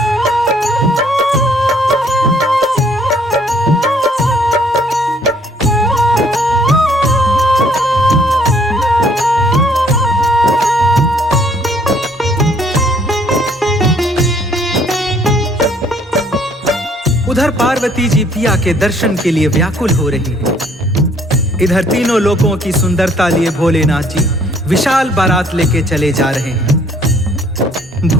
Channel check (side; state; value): both; normal; correlation 0.62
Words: उधर पार्वती जी पिया के दर्शन के लिए व्याकुल हो रही है। इधर तीनों लोकों की सुंदरता लिए भोलेनाथ जी विशाल बारात लेके चले जा रहे हैं।